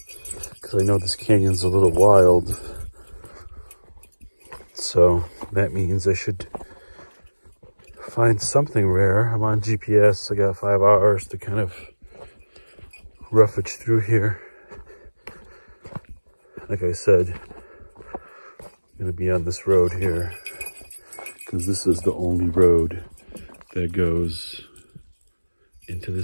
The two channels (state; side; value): inverted; both; correlation -1.00